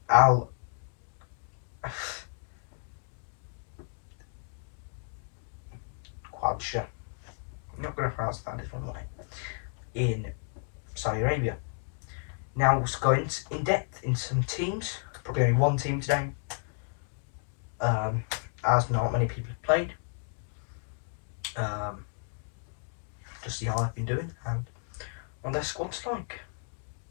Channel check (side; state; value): right; silent; 55 dB below the other